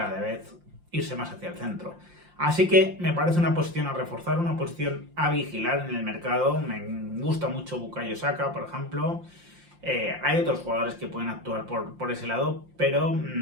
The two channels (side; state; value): left; late; 5.7 ms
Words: vez irse más hacia el centro. Así que me parece una posición a reforzar, una posición a vigilar en el mercado. Me gusta mucho Bukayo Saka, por ejemplo. Hay otros jugadores que pueden actuar por ese lado, pero